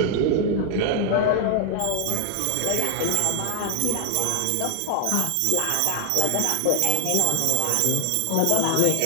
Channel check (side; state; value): both; different; correlation 0.00